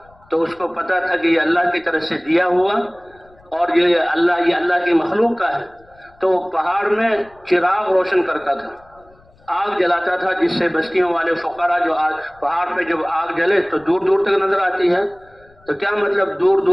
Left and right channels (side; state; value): left; noise; rumble, 30 dB below the sound